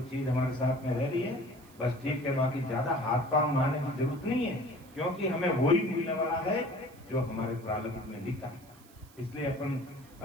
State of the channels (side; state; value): right; noise; hiss, 25 dB below the sound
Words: चीज हमारे साथ में रह रही है बस ठीक है, बाकी ज्यादा हाथ पांव मारने की जरूरत नहीं है, क्योंकि हमें वही मिलने वाला है जो हमारे प्रारब्ध में लिखा है। इसलिए अपन